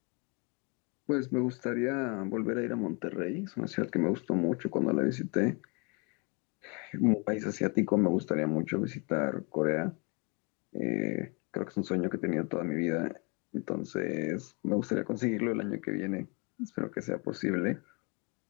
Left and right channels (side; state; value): right; quieter; 32.4 dB